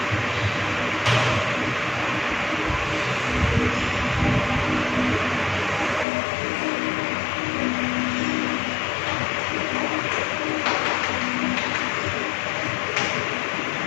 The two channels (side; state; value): right; drops out; at 6.1 s